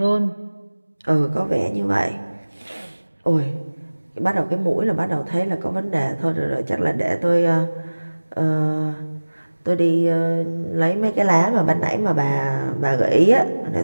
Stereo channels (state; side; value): inverted; both; correlation -1.00